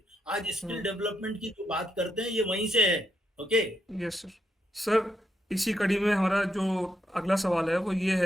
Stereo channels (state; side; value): normal; both; correlation 0.80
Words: आज स्किल डेवलपमेंट की जो बात करते हैं ये वहीं से है। ओके। Yes sir. सर, इसी कड़ी में हमारा जो अगला सवाल है वो ये